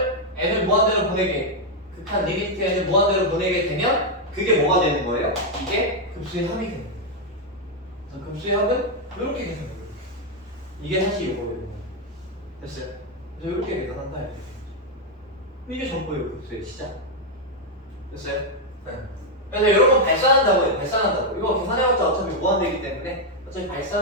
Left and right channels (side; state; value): both; normal; correlation 0.01